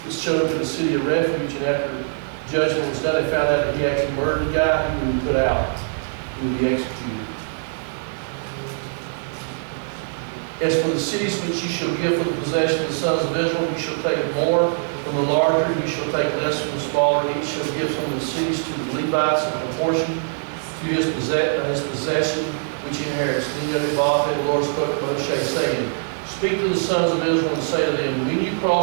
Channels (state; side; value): silent; left; digital silence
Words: was chosen to the city of refuge, and after judgment was done, they found out that he actually murdered the guy, he would be put out. He would be executed. As for the cities which you shall give for the possession of the sons of Israel, you shall take more from the larger, you shall take less from the smaller. Each shall give some of the cities to the Levites in proportion to his possession, which he inherits. Then Yodhe-Vafe, the Lord spoke to Moshe, saying, speak to the sons of Israel and say to them, when you